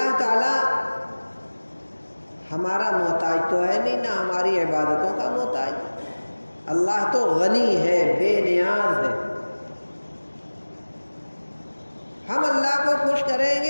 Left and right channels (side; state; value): both; inverted; correlation -1.00